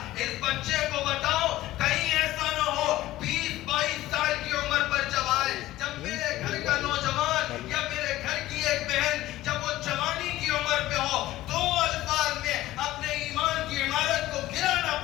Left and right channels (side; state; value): right; quieter; 15.8 dB